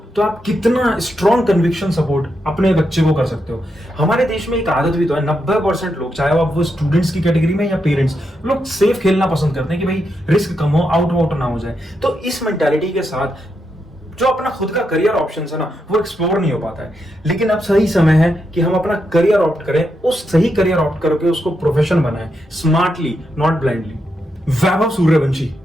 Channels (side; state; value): both; normal; correlation 0.83